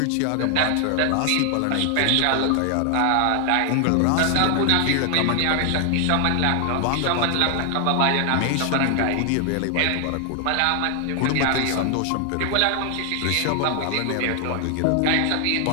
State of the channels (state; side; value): different; both; correlation 0.00